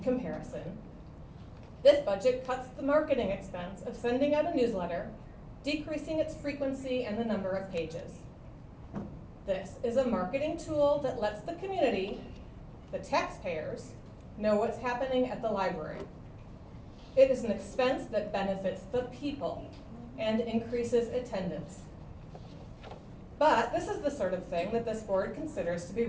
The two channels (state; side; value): identical; both; correlation 1.00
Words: this budget cuts the marketing expense of sending out a newsletter, decreasing its frequency and the number of pages. This is a marketing tool that lets the community, the taxpayers, know what's happening at the library. It is an expense that benefits the people and increases attendance. But this is the sort of thing that this board considers to be